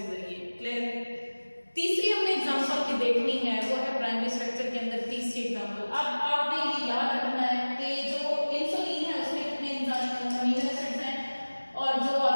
जरिए। क्लियर? तीसरी हमने एग्जांपल की देखनी है, वो है प्राइमरी स्ट्रक्चर के अंदर तीसरी एग्जांपल। अब आपने ये याद रखना है कि जो इंसुलिन है उसमें कितने अमीनो एसिड्स हैं और जो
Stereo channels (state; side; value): inverted; both; correlation -1.00